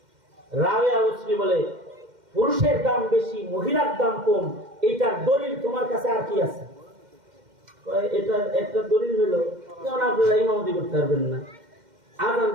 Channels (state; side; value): late; left; 2.1 ms